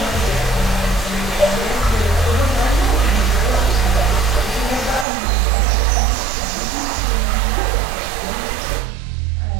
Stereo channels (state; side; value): drops out; left; at 5.1 s